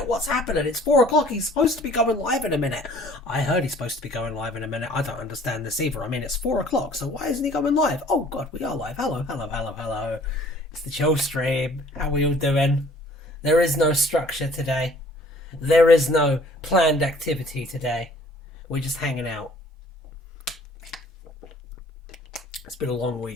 What's happening? It's 4 o'clock. He's supposed to be going live in a minute. I heard he's supposed to be going live in a minute. I don't understand this either. I mean, it's 4 o'clock, so why isn't he going live? Oh, God, we are live. Hello, hello, hello, hello. It's the chill stream. How are we all doing? There is no structure today. There is no planned activity today. We're just hanging out. It's been a long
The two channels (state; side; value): normal; both; correlation 0.54